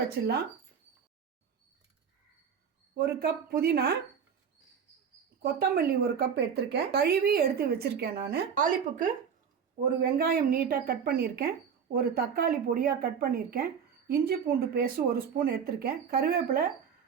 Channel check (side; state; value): left; quieter; 7.1 dB